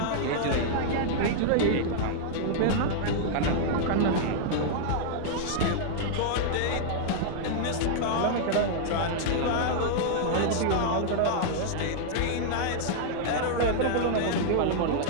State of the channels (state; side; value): different; both; correlation -0.01